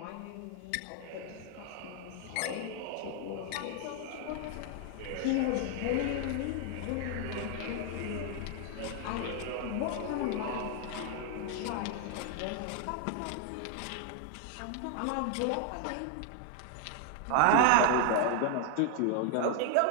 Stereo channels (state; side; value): different; both; correlation 0.00